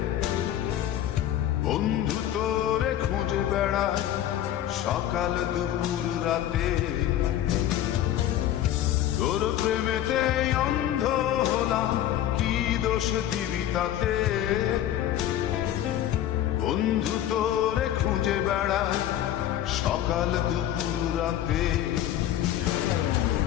বন্ধু তোরে খুঁজে বেড়ায় সকাল দুপুর রাতে। তোর প্রেমেতে অন্ধ হলাম, কি দোষ দিবি তাতে? বন্ধু তোরে খুঁজে বেড়ায় সকাল দুপুর রাতে।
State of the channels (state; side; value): quieter; right; 11.9 dB